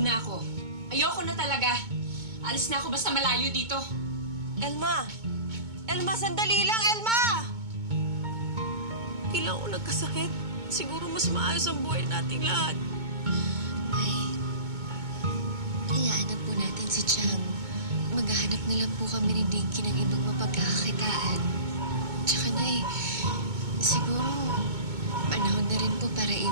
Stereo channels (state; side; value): late; left; 2.2 ms